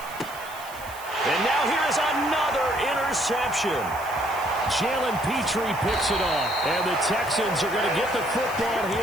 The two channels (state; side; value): noise; right; hiss, 17 dB below the sound